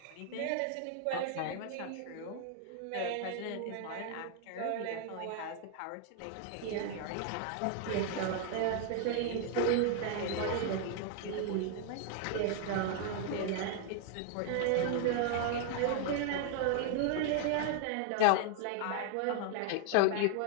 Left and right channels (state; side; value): different; both; correlation 0.00